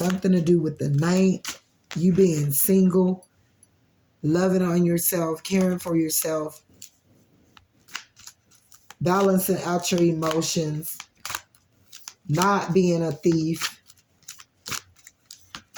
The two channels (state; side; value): identical; both; correlation 1.00